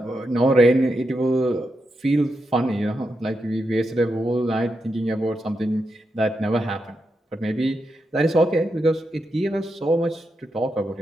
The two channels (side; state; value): both; normal; correlation 0.85